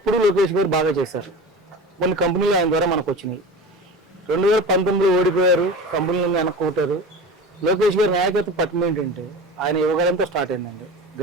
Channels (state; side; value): normal; both; correlation 0.33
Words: లోకేష్ గారు బాగా చేశారు. కొన్ని కంపెనీలు ఆయన ద్వారా మనకు వచ్చినాయి. 2019లో ఓడిపోయారు, కంపెనీలను వెనక్కొట్టారు. లోకేష్ గారి నాయకత్వ పట్టణం ఏంటంటే ఆయన యువకాలంతో స్టార్ట్ అయిందండి.